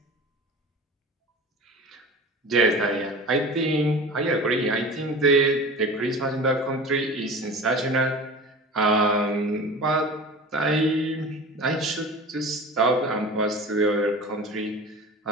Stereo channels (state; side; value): normal; both; correlation 0.36